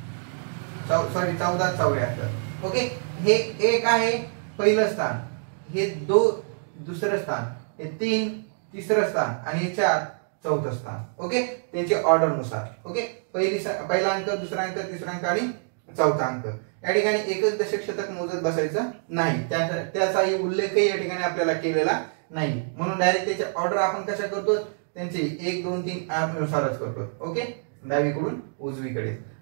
14, 74. ओके, हे 1 आहे पहिलं स्थान, हे 2 दुसरं स्थान, हे 3 तिसरं स्थान आणि हे 4 चौथं स्थान. ओके, त्यांचे ऑर्डर नुसार. ओके, पहिला अंक, दुसरा अंक, तिसरा अंक आणि चौथा अंक. या ठिकाणी एकच दशक शतक मोजत बसायचं नाही, त्याचाही उल्लेखही या ठिकाणी आपल्याला केलेला नाही. म्हणून डायरेक्ट त्याचे ऑर्डर आपण कशा करतो, त्यांचे 1 2 3 नुसारच करतो. ओके, डावीकडून उजवीकडे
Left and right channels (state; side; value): silent; left; digital silence